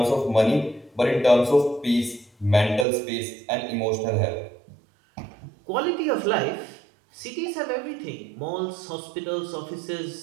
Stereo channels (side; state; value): left; drops out; at 2.9 s